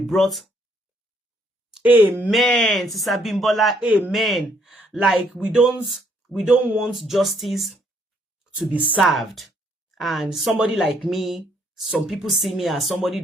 Amen. Sister Bimbola, amen. Like we don't want justice to be served. And somebody like me, some people see me as somebody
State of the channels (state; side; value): normal; both; correlation 0.68